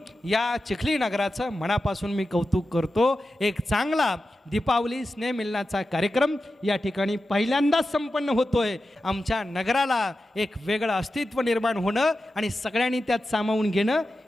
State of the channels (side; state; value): both; normal; correlation 0.92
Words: या चिखली नगराचं मनापासून मी कौतुक करतो. एक चांगला दीपावली स्नेहमिलनाचा कार्यक्रम या ठिकाणी पहिल्यांदाच संपन्न होतोय. आमच्या नगराला एक वेगळं अस्तित्व निर्माण होणं आणि सगळ्यांनी त्यात सामावून घेणं